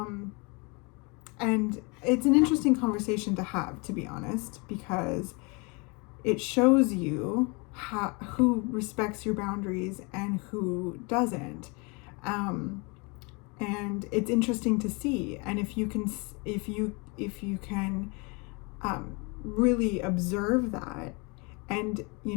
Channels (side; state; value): right; quieter; 30.0 dB